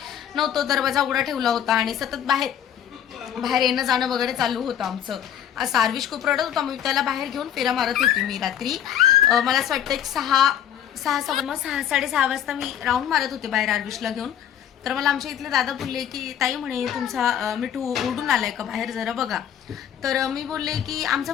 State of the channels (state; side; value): quieter; right; 10.0 dB